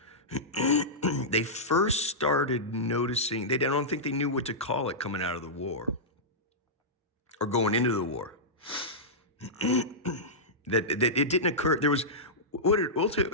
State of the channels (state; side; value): normal; both; correlation -0.13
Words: They first started noticing, I don't think they knew what to call it coming out of the war or going into the war. that it didn't occur. There was,